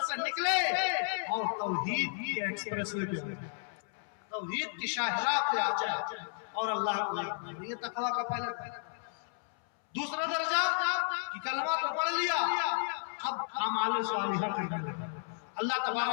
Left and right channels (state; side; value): silent; right; 56 dB below the other